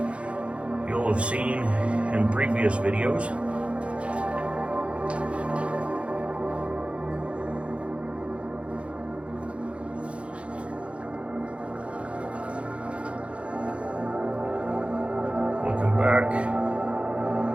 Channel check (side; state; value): left; late; 0.061 ms